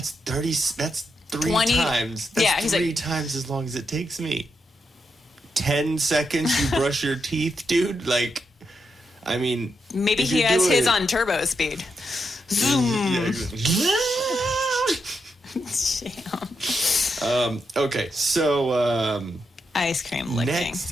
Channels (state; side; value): normal; both; correlation 0.83